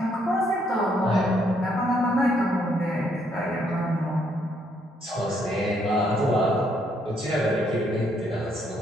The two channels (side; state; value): both; normal; correlation 0.71